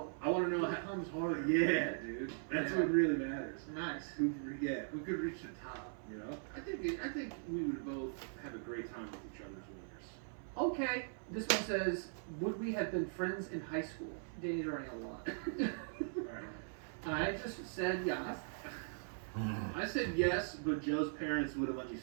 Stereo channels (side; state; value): left; silent; 51 dB below the other